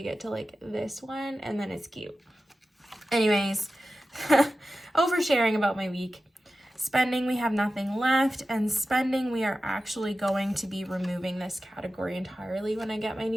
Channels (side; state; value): both; normal; correlation 0.93